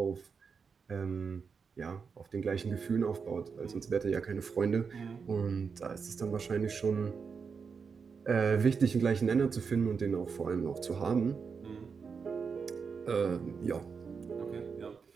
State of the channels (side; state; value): left; quieter; 5.7 dB